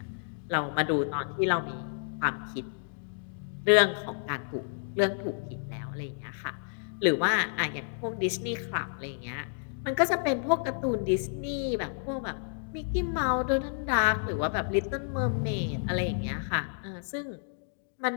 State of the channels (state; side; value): silent; right; digital silence